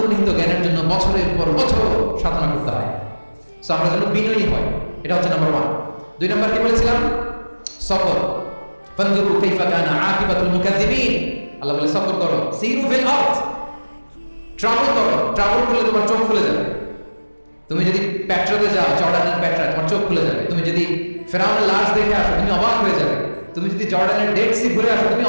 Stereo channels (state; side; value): inverted; both; correlation -1.00